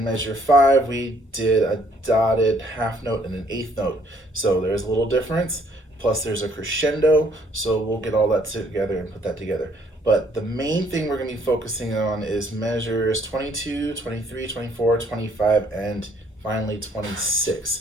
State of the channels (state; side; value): normal; both; correlation 0.64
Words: measure 5 we did a dotted half note and an eighth note. So there's a little difference. Plus there's a crescendo, so we'll get all that together and put that together. But the main thing we're going to be focusing on is measures 22, 23, 24, 25, and finally